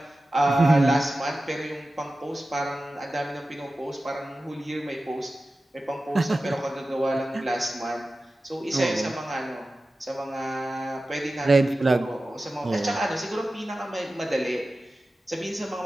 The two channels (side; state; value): both; normal; correlation 0.95